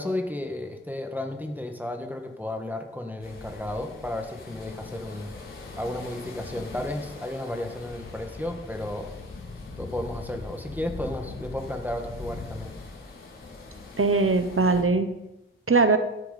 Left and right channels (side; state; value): both; normal; correlation 0.34